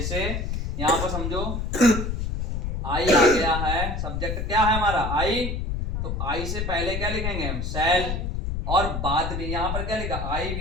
यहाँ पर समझो आई आ गया है, सब्जेक्ट क्या है हमारा, आई, तो आई से पहले क्या लिखेंगे हम, शैल, और बाद में यहाँ पर क्या लिखा, आई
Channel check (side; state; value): left; noise; rumble, 2 dB below the sound